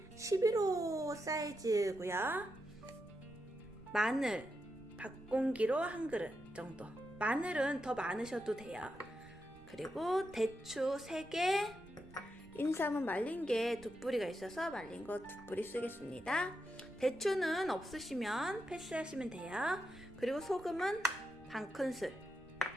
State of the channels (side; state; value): right; noise; rumble, 23 dB below the sound